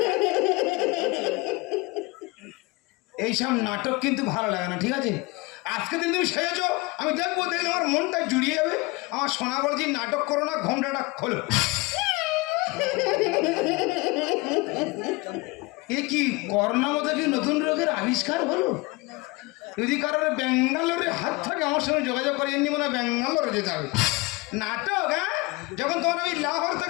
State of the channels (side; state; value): right; quieter; 23.7 dB